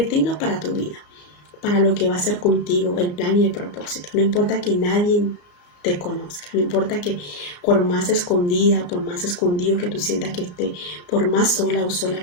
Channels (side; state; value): right; late; 34 ms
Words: tenga para tu vida, para lo que va a hacer contigo, el plan y el propósito. No importa que nadie te conozca, no importa que por más escondida, por más escondido que tú sientas que esté, por más sola o